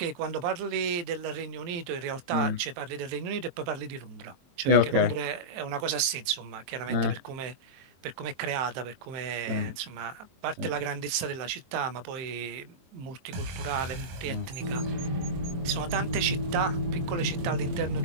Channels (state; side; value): late; left; 23 ms